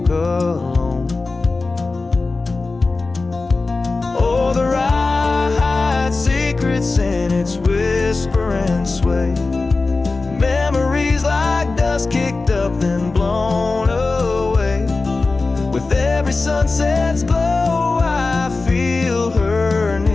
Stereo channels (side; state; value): right; quieter; 3.7 dB